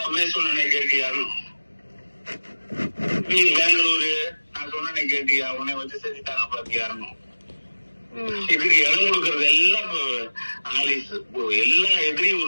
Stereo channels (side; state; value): both; inverted; correlation -1.00